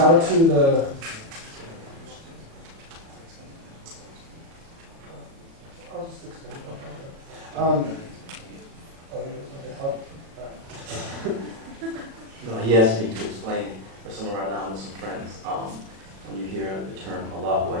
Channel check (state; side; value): late; left; 37 ms